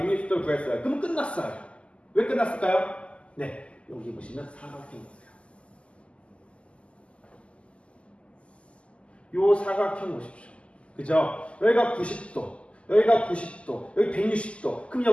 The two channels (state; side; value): late; right; 0.056 ms